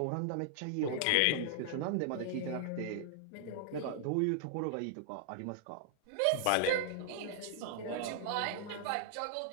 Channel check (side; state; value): both; different; correlation -0.01